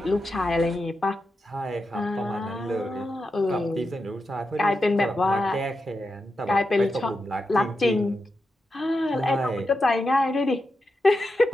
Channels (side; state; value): both; normal; correlation 0.88